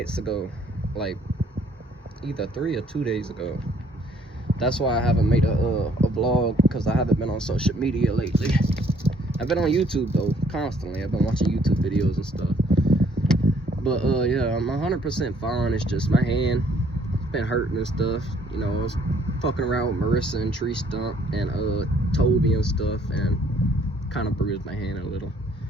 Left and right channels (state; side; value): normal; both; correlation 0.63